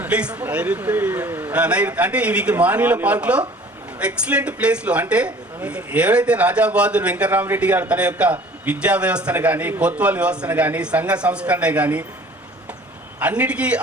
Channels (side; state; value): both; normal; correlation 0.49